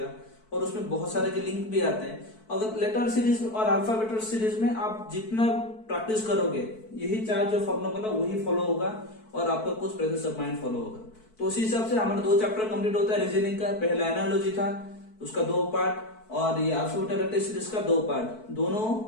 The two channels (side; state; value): right; late; 4.6 ms